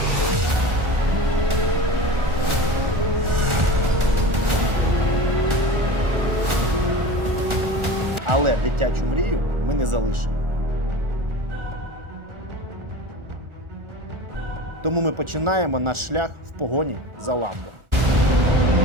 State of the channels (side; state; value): left; late; 1.4 ms